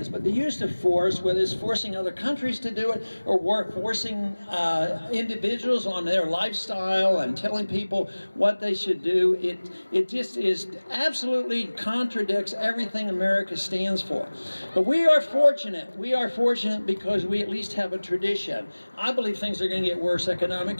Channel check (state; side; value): inverted; both; correlation -1.00